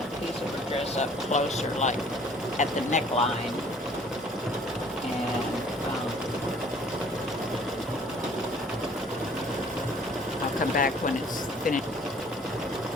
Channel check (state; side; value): normal; both; correlation 0.55